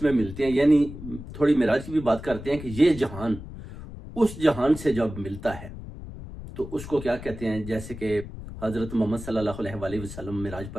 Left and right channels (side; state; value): left; noise; rumble, 12 dB below the sound